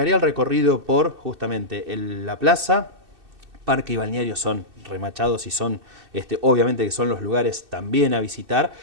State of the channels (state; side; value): late; left; 2.6 ms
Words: el recorrido por justamente la plaza. Parque y balneario son remachados y son, obviamente que son los lugares también a visitar,